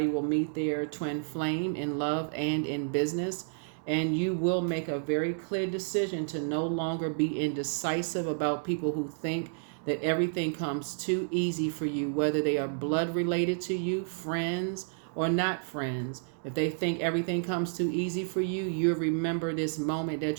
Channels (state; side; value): silent; left; digital silence